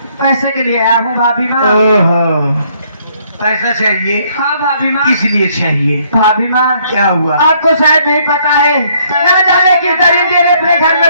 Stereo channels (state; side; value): inverted; both; correlation -0.66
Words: पैसे के लिए आया हूँ भाभी माँ। ओहो, पैसा चाहिए? हाँ भाभी माँ। किस लिए चाहिए? भाभी माँ, क्या हुआ? आपको शायद नहीं पता है, न जाने किस दरिंदे ने अपने घर में